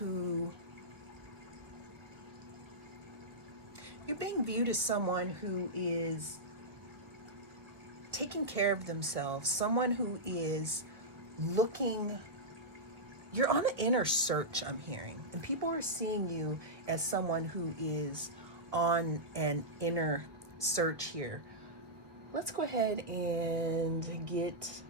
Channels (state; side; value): late; left; 1.5 ms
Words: is taking care of themselves, someone who is looking, you're on an inner search, I'm hearing, and people are seeing you as someone who is on an inner search here. Let's go ahead and get